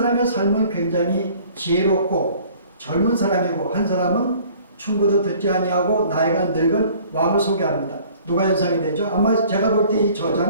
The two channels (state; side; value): inverted; both; correlation -0.53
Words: 삶은 굉장히 지혜롭고 젊은 사람이고 한 사람은 충고도 듣지 아니하고 나이가 늙은 왕을 소개합니다. 누가 연상이 되죠? 아마 제가 볼 때 이